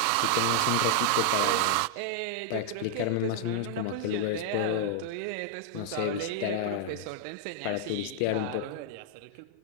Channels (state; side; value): different; both; correlation -0.01